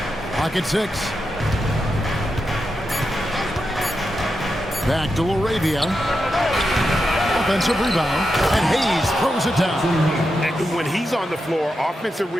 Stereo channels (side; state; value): both; normal; correlation 0.87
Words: Pocket 6. Back to LaRavia. Offensive rebound, and Hayes throws it down. And when he's on the floor, offensive